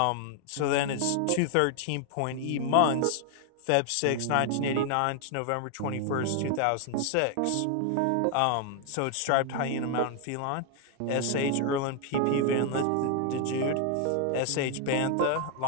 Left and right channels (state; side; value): different; both; correlation 0.00